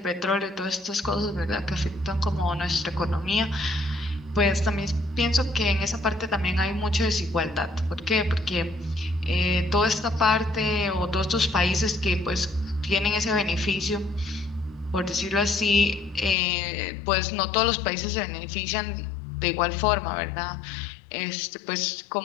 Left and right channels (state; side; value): drops out; right; at 16.4 s